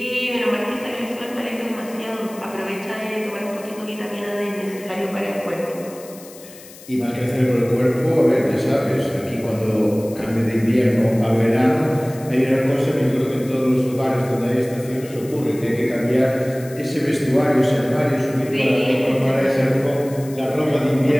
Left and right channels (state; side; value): noise; left; hiss, 19 dB below the sound